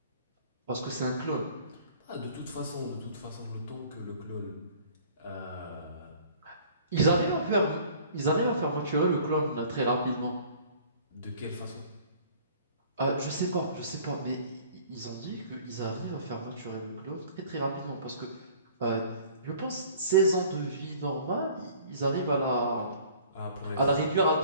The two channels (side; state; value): both; inverted; correlation -0.51